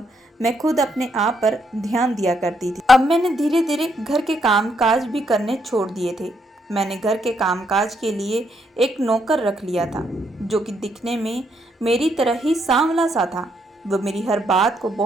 मैं खुद अपने आप पर ध्यान दिया करती थी। अब मैंने धीरे धीरे घर के कामकाज भी करने छोड़ दिए थे। मैंने घर के कामकाज के लिए एक नौकर रख लिया था, जो कि दिखने में मेरी तरह ही सांवला सा था। वह मेरी हर बात को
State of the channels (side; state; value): both; normal; correlation 0.75